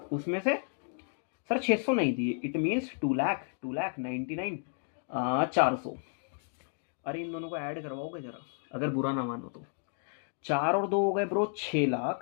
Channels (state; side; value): silent; right; 56 dB below the other